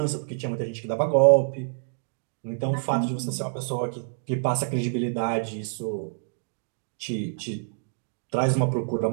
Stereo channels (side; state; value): left; silent; digital silence